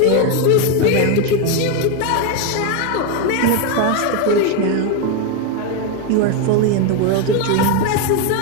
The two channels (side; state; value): both; different; correlation 0.02